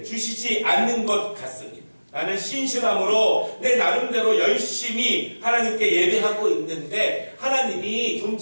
주시지 않는 것 같습니다. 나는 신실함으로 내 나름대로 열심히 하나님께 예배하고 있는데 하나님이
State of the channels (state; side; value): inverted; both; correlation -1.00